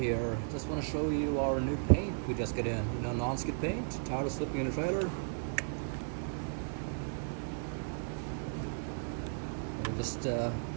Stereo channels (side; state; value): left; silent; digital silence